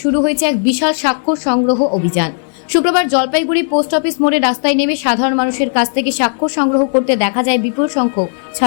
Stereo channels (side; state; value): right; silent; digital silence